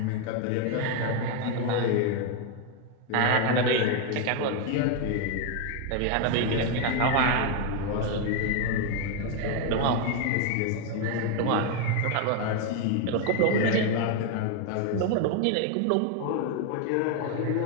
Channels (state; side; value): different; both; correlation 0.01